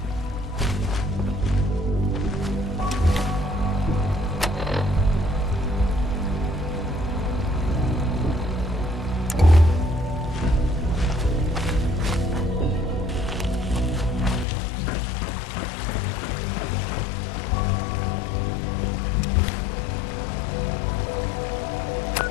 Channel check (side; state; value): right; drops out; at 14.5 s